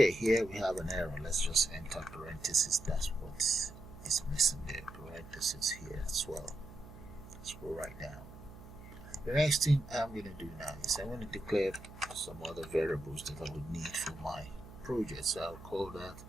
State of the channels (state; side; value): noise; right; hum, 16 dB below the sound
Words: here we have an error. Let's just enter parentheses. That's what is missing there. Parentheses here as well. Scroll right down. The next thing I'm going to do now is I'm going to declare some other variables that I would need for my project. So I'll call that